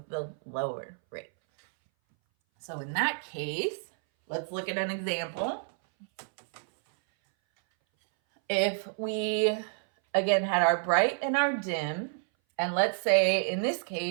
the lower rate. So in that case, let's look at an example. If we, again, had our bright and our dim, and let's say in this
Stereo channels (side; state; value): left; silent; 58 dB below the other